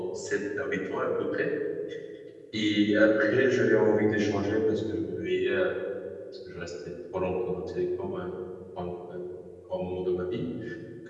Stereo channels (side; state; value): both; identical; correlation 1.00